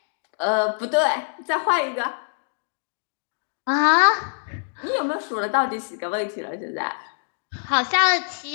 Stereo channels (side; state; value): right; silent; digital silence